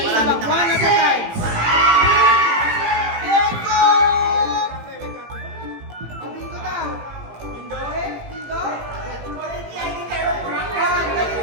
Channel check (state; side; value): late; left; 18 ms